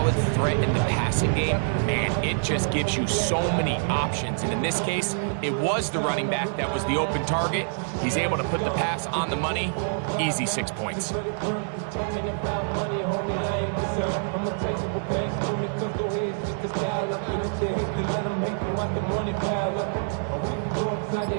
threat in the passing game, man, it just gives you so many options. And in this case, it was the running back that was the open target. He's able to put the pass on the money. Easy 6 points.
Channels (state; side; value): silent; left; digital silence